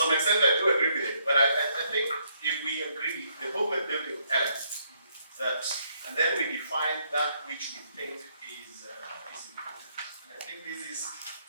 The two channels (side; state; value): both; inverted; correlation -0.72